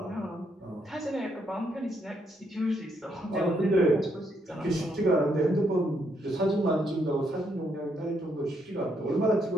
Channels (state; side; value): normal; both; correlation 0.75